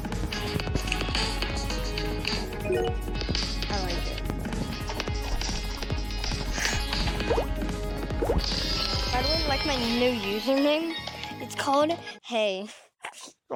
I like it. By the way, like my new username? It's called Hey.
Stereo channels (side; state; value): both; identical; correlation 1.00